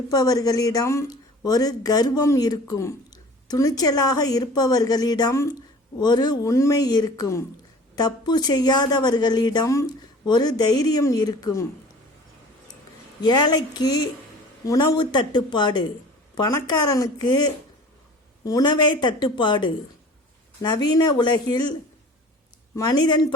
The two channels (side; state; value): both; normal; correlation 0.44